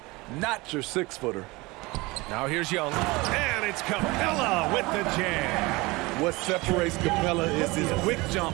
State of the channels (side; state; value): left; quieter; 22.9 dB